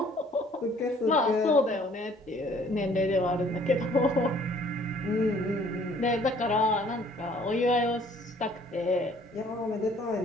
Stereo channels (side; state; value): both; normal; correlation 0.58